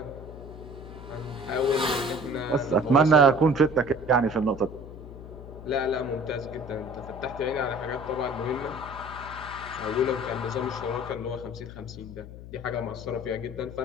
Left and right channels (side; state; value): left; noise; hum, 13 dB below the sound